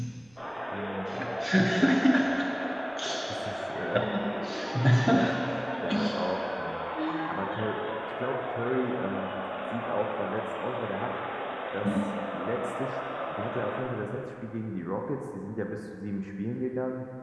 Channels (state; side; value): noise; right; rumble, 30 dB below the sound